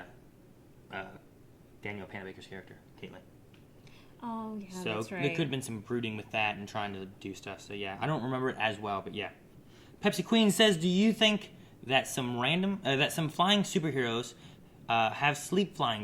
Daniel Panabaker's character, Caitlin. Oh, yeah, so that's right. there could have been some brooding with that and trying to do stuff. So, yeah, I don't remember it as well, but yeah. Pepsi Queen says, do you think that some flying superheroes have sleep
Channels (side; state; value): both; identical; correlation 1.00